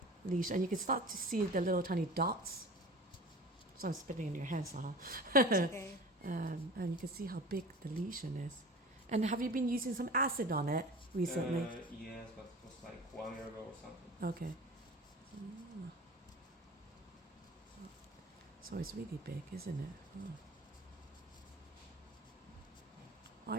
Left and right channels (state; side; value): normal; both; correlation 0.38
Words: leash, and you can start to see the little tiny dots. So I'm spitting in your hands, huh? Okay. And you can see how big the lesion is. And have you been using some acid on it recently? Yes, but it was like 1 year ago or something. Okay. Ah. So it's really big, isn't it? Oh.